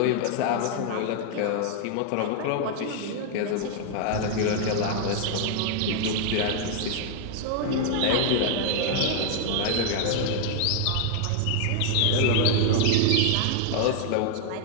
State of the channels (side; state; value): both; different; correlation 0.00